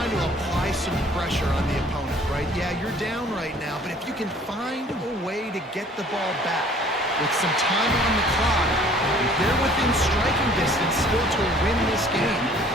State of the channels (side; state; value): both; normal; correlation 0.54